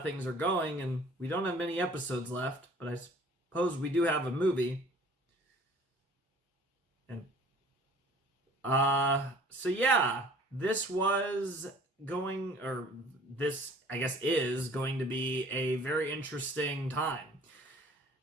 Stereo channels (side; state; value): both; normal; correlation 0.51